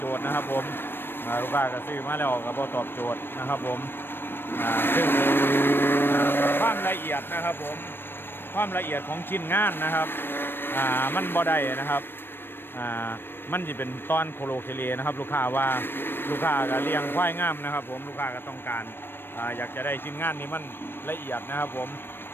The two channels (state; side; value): late; right; 0.099 ms